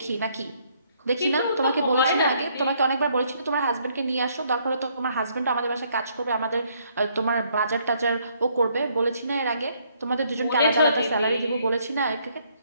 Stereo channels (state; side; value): inverted; both; correlation -0.68